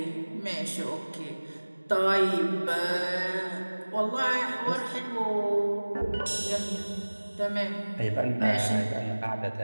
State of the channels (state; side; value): inverted; both; correlation -1.00